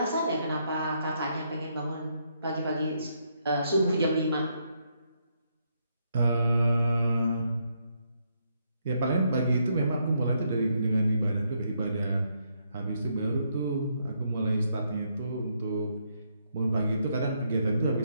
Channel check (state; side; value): inverted; both; correlation -0.76